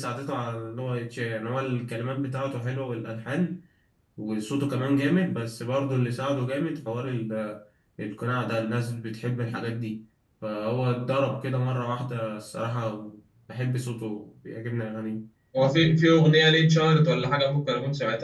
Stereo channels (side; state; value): both; identical; correlation 1.00